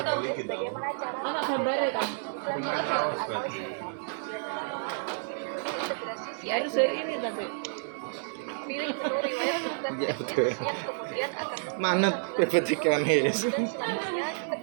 iki tahu. bagaimana cara Anak gambarnya kan. Rumah kaos berarti. integrasi Harus dari ini tapi. pilih menu riwayat bukan Ya betul. yang kemudian akan Manut PPTK nih. dan selanjutnya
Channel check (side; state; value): left; silent; digital silence